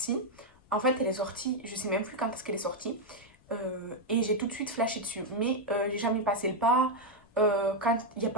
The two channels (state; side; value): noise; left; rumble, 29 dB below the sound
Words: En fait, elle est sortie, je sais même plus quand est-ce qu'elle est sortie. Et j'ai tout de suite flashé dessus. Mais j'ai jamais passé le pas. Quand il n'y a